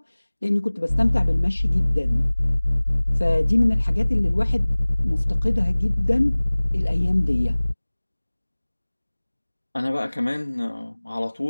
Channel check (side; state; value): both; inverted; correlation -1.00